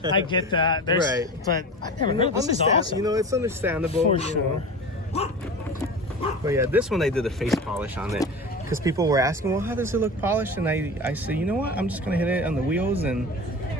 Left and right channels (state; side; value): normal; both; correlation 0.32